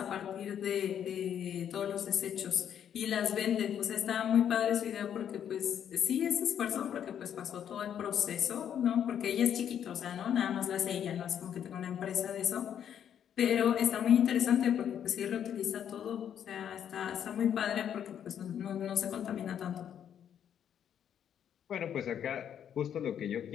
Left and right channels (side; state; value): right; quieter; 9.2 dB